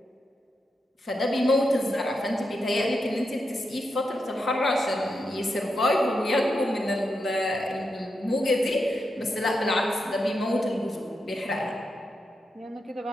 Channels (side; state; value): both; normal; correlation 0.86